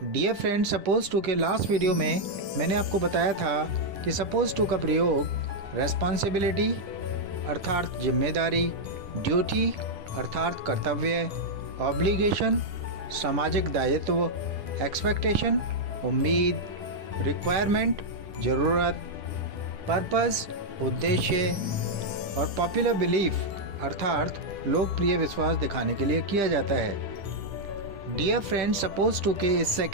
Dear friends, suppose to के लास्ट वीडियो में मैंने आपको बताया था कि suppose to का प्रयोग responsibility अर्थात जिम्मेदारी, ड्यूटी अर्थात कर्तव्य, ऑब्लिगेशन सामाजिक दायित्व, एक्सपेक्टेशन उम्मीद, रिक्वायरमेंट ज़रूरत, पर्पस उद्देश्य और पॉपुलर बिलीफ अर्थात लोकप्रिय विश्वास दिखाने के लिए किया जाता है। डियर फ्रेंड्स, सपोज टू के इस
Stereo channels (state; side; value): late; left; 10 ms